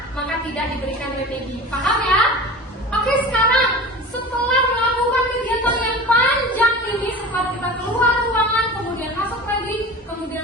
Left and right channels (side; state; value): both; normal; correlation 0.34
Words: maka tidak diberikan remedi. Paham ya? Oke, sekarang setelah melakukan kegiatan yang panjang ini, setelah kita keluar ruangan, kemudian masuk lagi,